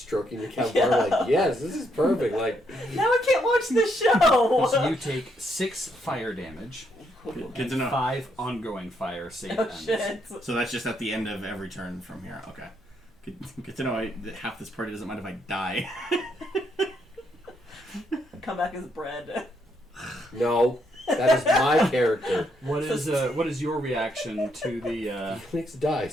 your campfire like, yes, this is perfect. Like, Now we can't watch the show. So you take 6 fire damage, Good to know. 5 ongoing fire save Oh ends. shit. So that's just at the end of every turn from here. Okay. Good to know that half this party doesn't mind if I die. Come back as bread. No, that is my character. What is your reaction to the Felix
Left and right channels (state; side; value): normal; both; correlation 0.75